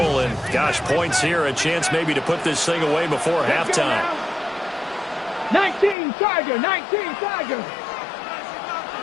and gosh, points here, a chance maybe to put this thing away before halftime. 19 Tiger, 19 Tiger.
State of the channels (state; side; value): drops out; right; at 6.0 s